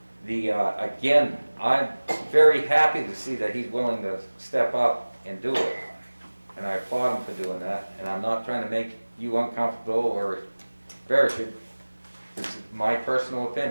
Again, I'm very happy to see that he's willing to step up and do it. And I applaud him for doing that, and I'm not trying to make you uncomfortable or embarrass you. It's my personal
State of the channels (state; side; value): inverted; both; correlation -1.00